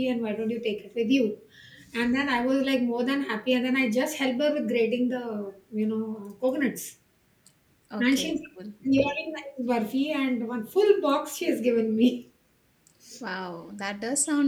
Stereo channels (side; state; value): both; identical; correlation 1.00